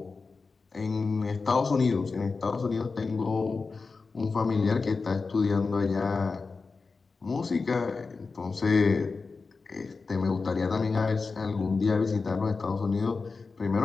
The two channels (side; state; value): right; quieter; 4.3 dB